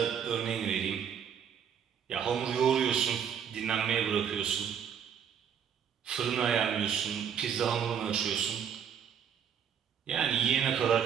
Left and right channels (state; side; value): quieter; left; 8.0 dB